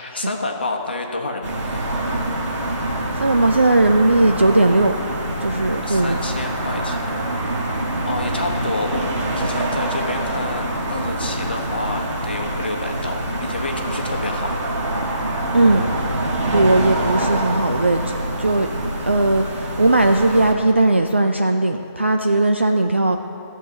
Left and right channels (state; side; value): inverted; both; correlation -0.78